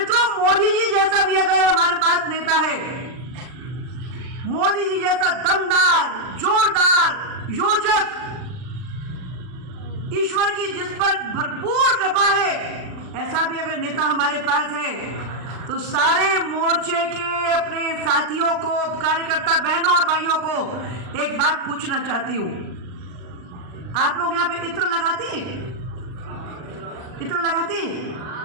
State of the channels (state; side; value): late; left; 40 ms